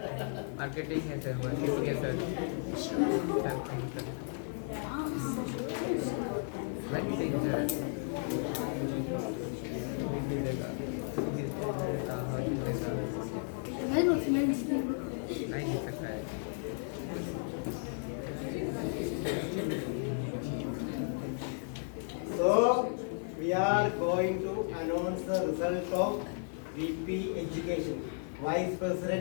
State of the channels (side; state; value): right; silent; 55 dB below the other